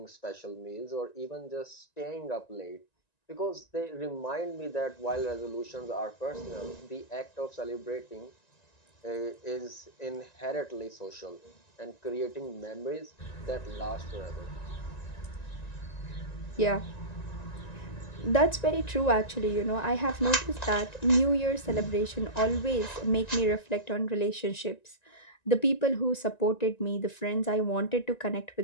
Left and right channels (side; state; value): right; late; 1.9 ms